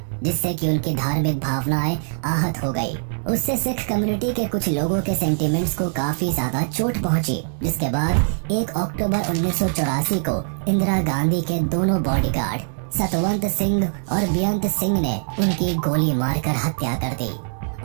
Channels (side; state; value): left; silent; digital silence